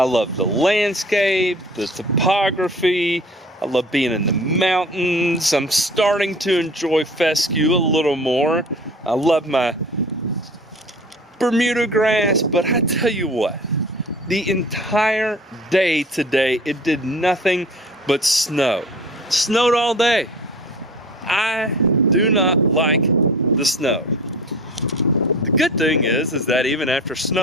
love the landscape, the topography. I love being in the mountains. I'm starting to enjoy fescue a little more. I love my Bermuda grass, but I tell you what, the entire day today, it did nothing but snow. It snowed all day. I do not like the snow. The good thing is that even after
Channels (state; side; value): normal; both; correlation 0.42